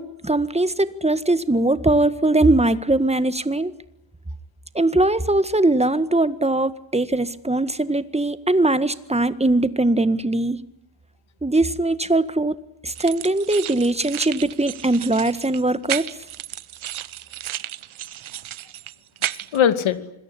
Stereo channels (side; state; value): both; normal; correlation 0.62